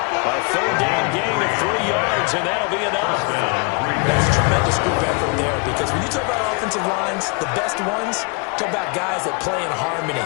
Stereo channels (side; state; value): right; quieter; 31.9 dB